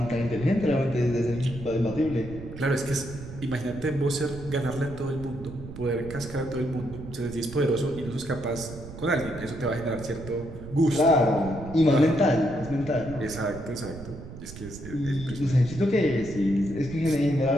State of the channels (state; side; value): noise; right; rumble, 12 dB below the sound